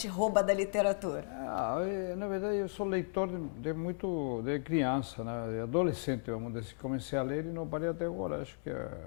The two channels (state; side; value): silent; right; digital silence